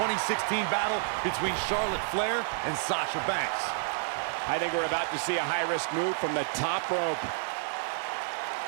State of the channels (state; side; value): silent; left; 58 dB below the other